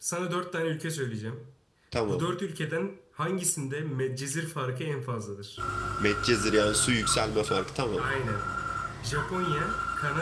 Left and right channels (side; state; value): both; identical; correlation 1.00